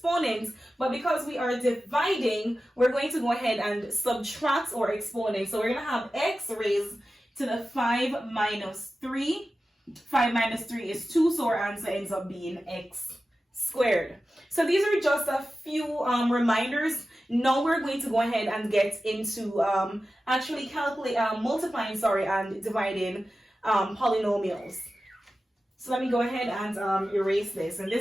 But because we are dividing, we're going to go ahead and subtract our exponent. So we're going to have x raised to the 5 minus 3. 5 minus 3 is 2, so our answer ends up being x squared. So these are just a few reminders. Now we're going to go ahead and get into actually multiplying and dividing polynomials. So let me go ahead and erase this. And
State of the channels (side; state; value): both; normal; correlation 0.94